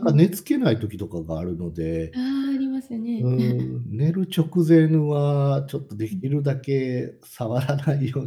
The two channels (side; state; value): both; identical; correlation 1.00